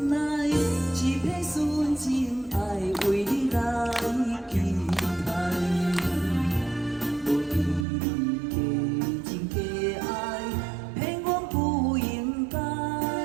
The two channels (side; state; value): left; drops out; at 7.9 s